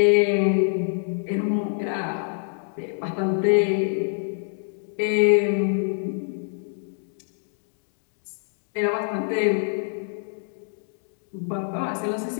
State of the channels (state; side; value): silent; right; digital silence